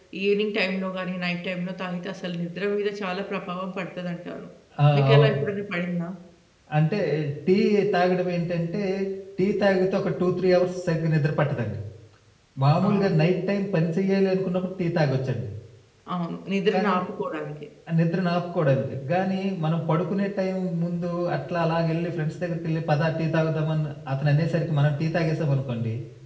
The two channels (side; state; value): both; identical; correlation 1.00